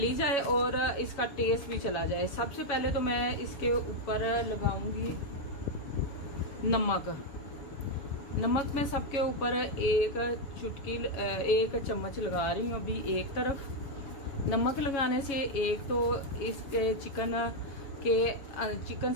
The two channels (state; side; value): late; right; 7.2 ms